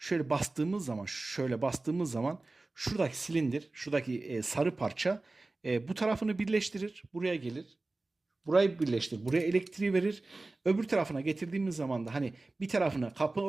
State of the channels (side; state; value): left; quieter; 3.2 dB